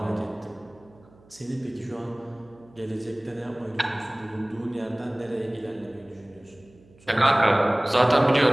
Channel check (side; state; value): right; noise; hum, 28 dB below the sound